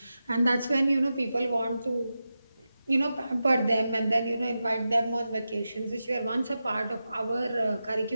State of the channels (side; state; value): both; inverted; correlation -0.91